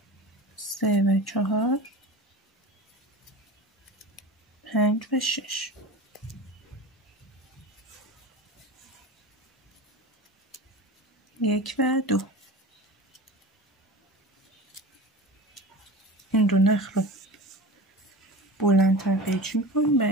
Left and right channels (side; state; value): both; normal; correlation 0.32